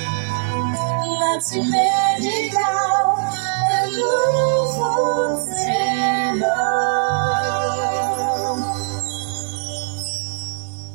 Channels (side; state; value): left; silent; digital silence